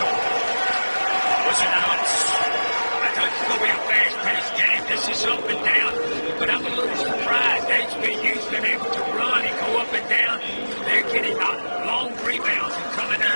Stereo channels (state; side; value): inverted; both; correlation -1.00